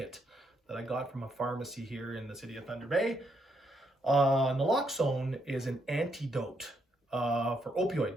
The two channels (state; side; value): normal; both; correlation 0.76